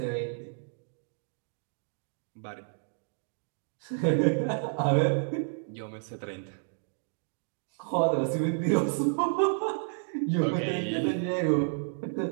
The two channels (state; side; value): silent; left; digital silence